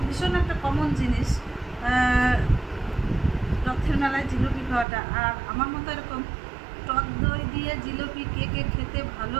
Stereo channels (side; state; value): left; drops out; at 4.9 s